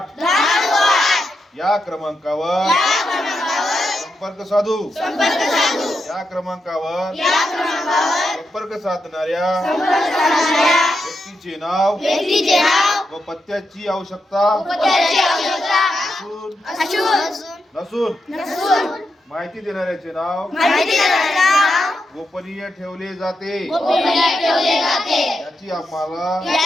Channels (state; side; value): normal; both; correlation 0.85